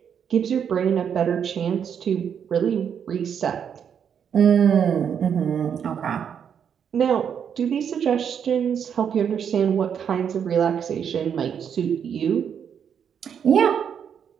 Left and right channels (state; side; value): quieter; left; 7.9 dB